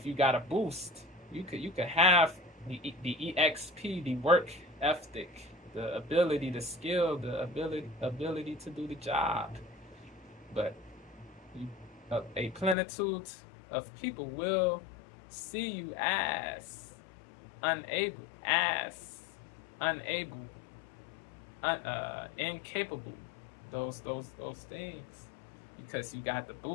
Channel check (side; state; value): right; drops out; at 12.8 s